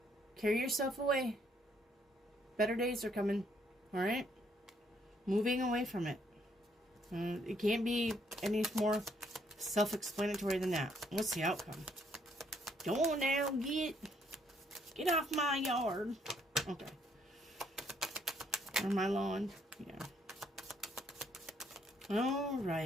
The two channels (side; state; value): both; normal; correlation 0.69